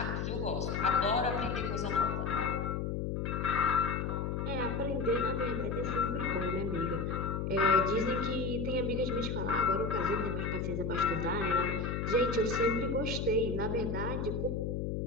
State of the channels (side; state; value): left; noise; hum, 1 dB below the sound